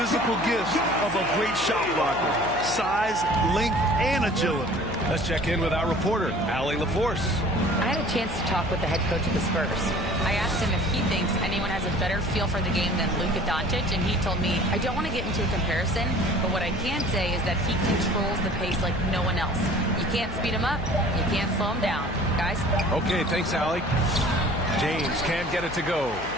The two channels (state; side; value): noise; left; hum, 12 dB below the sound